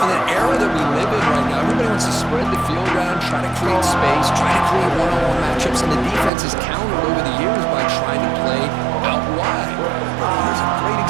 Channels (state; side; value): drops out; left; at 6.3 s